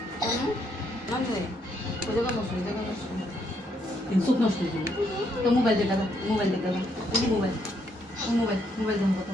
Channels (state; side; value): normal; both; correlation 0.73